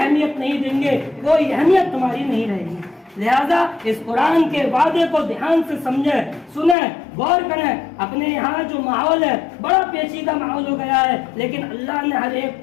نہیں دیں گے، کوئی اہمیت تمہاری نہیں رہے گی۔ لہذا اس قرآن کے وعدے کو دھیان سے سمجھیں، سنیں، غور کریں۔ اپنے یہاں جو ماحول ہے بڑا پیچیدہ ماحول ہو گیا ہے، لیکن اللہ نے ہر ایک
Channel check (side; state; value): right; drops out; at 6.8 s